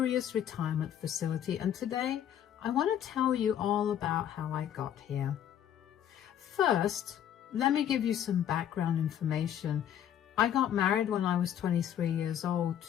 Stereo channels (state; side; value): quieter; right; 10.1 dB